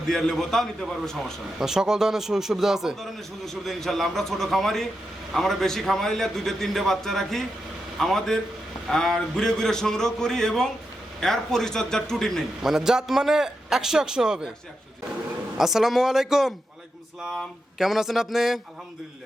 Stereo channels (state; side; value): normal; both; correlation 0.87